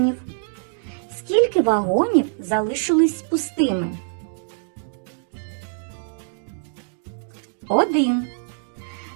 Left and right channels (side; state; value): left; silent; digital silence